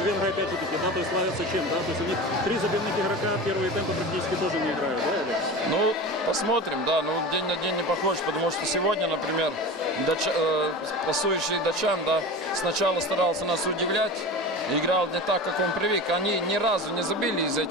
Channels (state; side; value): normal; both; correlation 0.31